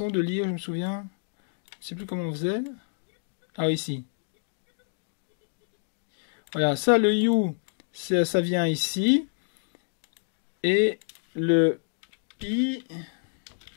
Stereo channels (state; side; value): silent; right; digital silence